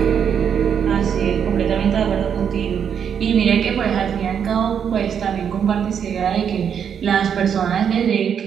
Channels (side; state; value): left; quieter; 7.9 dB